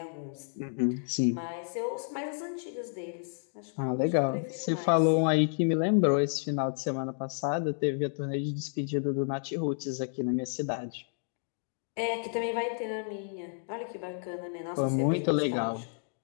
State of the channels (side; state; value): right; silent; digital silence